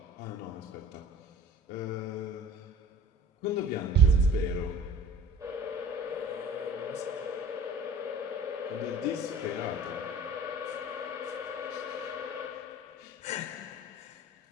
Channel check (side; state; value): both; normal; correlation 0.44